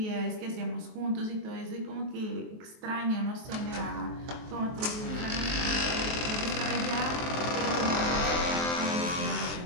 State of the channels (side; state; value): left; late; 23 ms